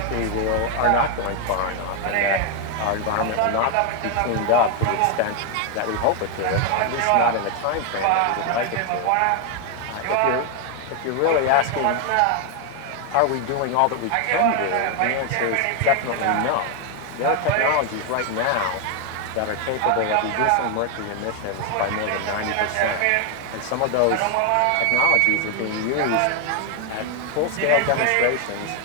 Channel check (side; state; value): both; different; correlation 0.01